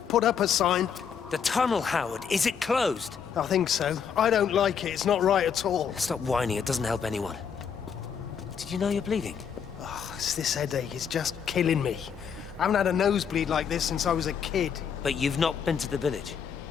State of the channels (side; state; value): right; quieter; 7.2 dB